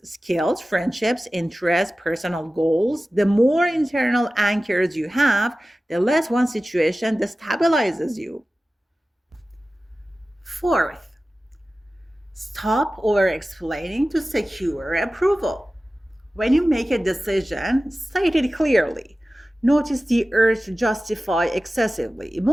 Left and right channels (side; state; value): both; normal; correlation 0.96